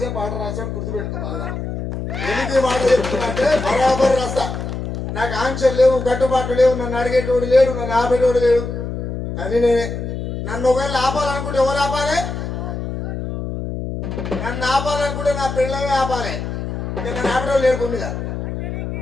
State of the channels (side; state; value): left; noise; hum, 5 dB below the sound